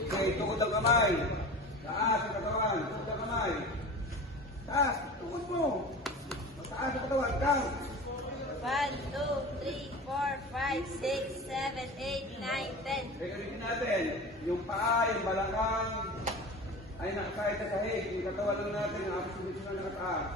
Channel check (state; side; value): normal; both; correlation 0.34